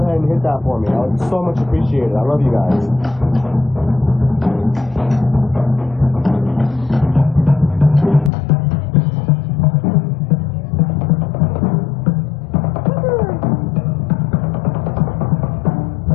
and hit that for me. I would so much appreciate it. I love you guys.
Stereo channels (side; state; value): right; drops out; at 8.3 s